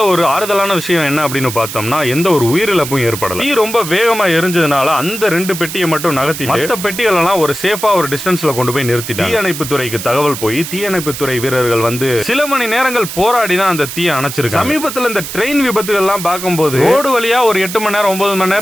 ஒரு ஆறுதலான விஷயம் என்ன அப்படின்னு பார்த்தோம்னா, எந்த ஒரு உயிரிழப்பும் ஏற்படல. தீ ரொம்ப வேகமா எரிஞ்சதுனால அந்த 2 பெட்டியை மட்டும் நகர்த்தி மற்ற பெட்டிகள் எல்லாம் ஒரு சேஃபா ஒரு டிஸ்டன்ஸ்ல கொண்டு போய் நிறுத்திட்டாங்க. தீயணைப்பு துறைக்கு தகவல் போய் தீயணைப்பு துறை வீரர்கள் வந்து சில மணி நேரங்கள் போராடி தான் அந்த தீயை அணைச்சிருக்காங்க. சமீபத்தில் இந்த ட்ரெயின் விபத்துகள் எல்லாம் பார்க்கும்போது ரோடு வழியா ஒரு 8 மணி நேரம் 9 மணி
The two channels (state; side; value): noise; right; hiss, 8 dB below the sound